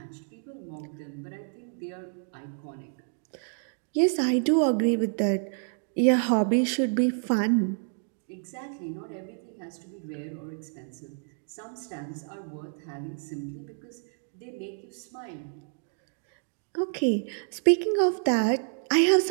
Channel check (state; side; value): silent; left; 59 dB below the other